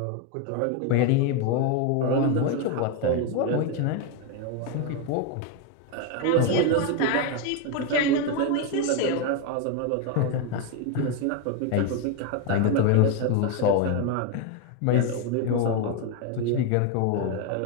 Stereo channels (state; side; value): different; both; correlation 0.02